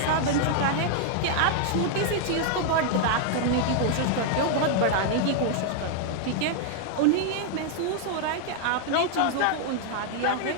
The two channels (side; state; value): both; different; correlation 0.00